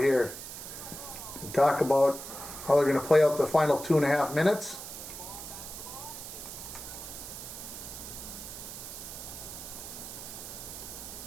here and talk about how they're going to play out the final 2.5 minutes.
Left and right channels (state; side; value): noise; right; hiss, 10 dB below the sound